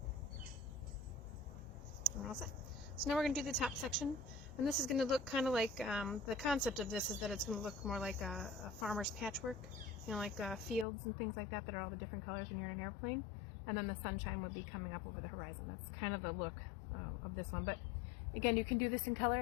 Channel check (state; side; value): drops out; right; at 10.9 s